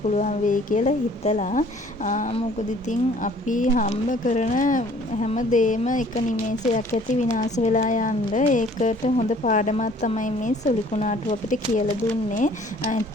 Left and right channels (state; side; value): normal; both; correlation 0.55